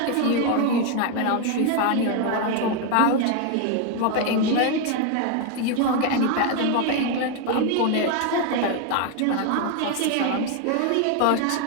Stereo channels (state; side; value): different; both; correlation 0.01